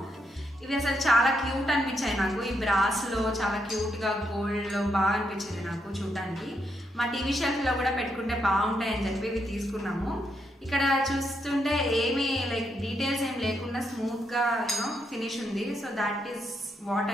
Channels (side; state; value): both; normal; correlation 0.79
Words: ఇవి అసలు చాలా క్యూట్ అనిపించాయి నాకు. ఈ బ్రాస్ లో చాలా క్యూట్ గా గోల్డ్ లో బాగా అనిపించింది నాకు చూడటానికి. మా టీవీ షెల్ఫ్ లో కూడా పెట్టుకుంటే బాగుంటాయి అని చెప్పి ఇవి తీసుకున్నాము. ఇక్కడ చూస్తుంటే ఏమి లైక్ డీటెయిల్స్ ఏం లేకుండా స్మూత్ గా ఫినిష్ ఉంది. So that is what